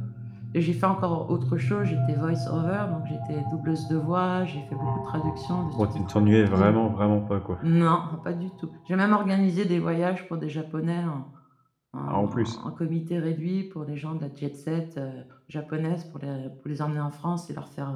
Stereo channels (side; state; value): both; identical; correlation 1.00